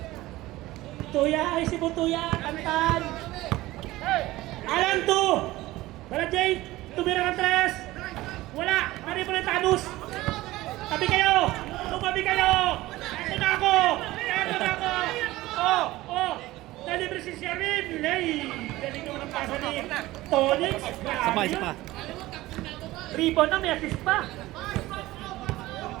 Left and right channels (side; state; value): left; quieter; 17.8 dB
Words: Tuya, ay si Butuya, Tantan. Alan to! Bala Jade, tumira ng 3. Wala, mari po ng Thanos. Tabi kayo! Tumabi kayo! Eto na ako! Oh! Nalibre si Sherwin! Lay! Galing naman ang pasa ni Tonix. Isa pa. Rebound na, may assist pa.